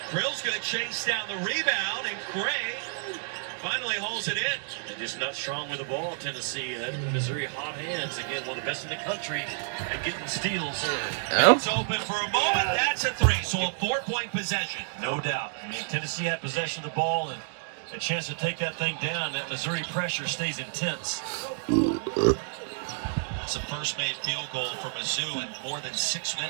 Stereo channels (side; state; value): left; silent; digital silence